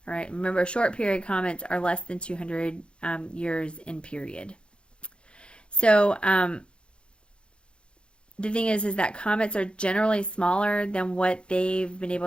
All right. Remember, short period comets are less than 200 years in period. So the thing is that comets are generally smaller than what they've been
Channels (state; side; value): late; right; 0.056 ms